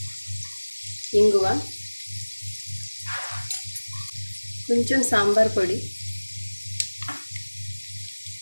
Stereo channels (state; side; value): inverted; both; correlation -1.00